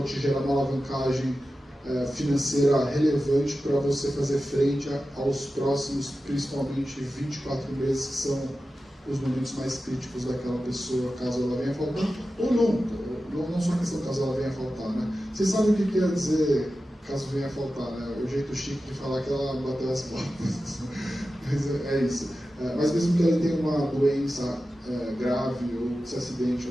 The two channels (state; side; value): normal; both; correlation 0.93